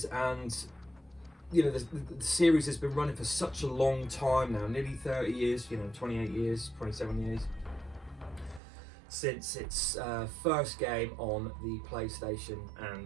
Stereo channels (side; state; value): left; drops out; at 8.6 s